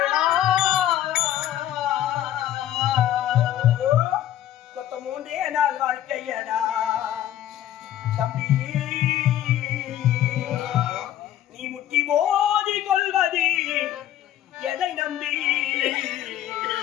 கொத்த மூன்றே நாள் வாழ்க்கையடா தம்பி நீ முட்டி மோதி கொள்வது எதை நம்பி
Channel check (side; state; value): right; quieter; 12.1 dB